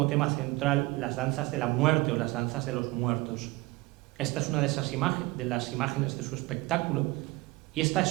tema central las danzas de la muerte o las danzas de los muertos. Esta es una de las imágenes de su espectáculo, y esta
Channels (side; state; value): left; quieter; 21.9 dB